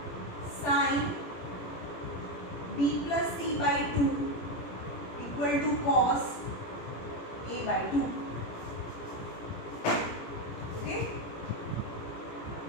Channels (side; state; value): right; late; 17 ms